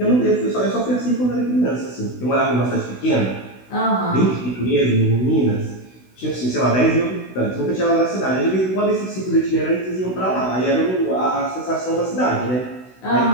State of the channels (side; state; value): right; late; 16 ms